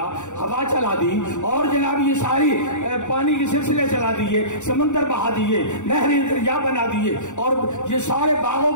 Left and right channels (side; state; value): right; late; 0.84 ms